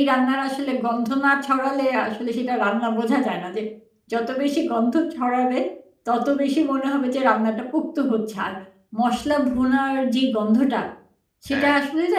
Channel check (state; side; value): identical; both; correlation 1.00